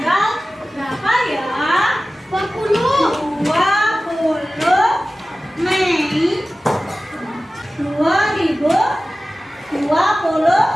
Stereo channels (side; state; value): both; normal; correlation 0.96